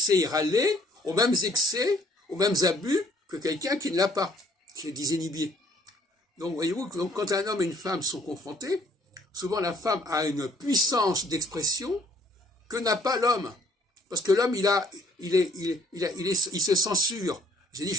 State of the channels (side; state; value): both; normal; correlation 0.61